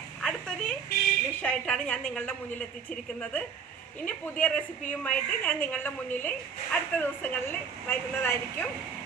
അടുത്തൊരു ഡിഷായിട്ടാണ് ഞാൻ നിങ്ങളുടെ മുന്നിൽ എത്തിച്ചിരിക്കുന്നത്. ഇനി പുതിയ റെസിപ്പിയുമായിട്ട് ഞാൻ നിങ്ങളുടെ മുന്നിൽ അടുത്ത ദിവസങ്ങളിൽ വരുന്നതായിരിക്കും.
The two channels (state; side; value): quieter; left; 6.3 dB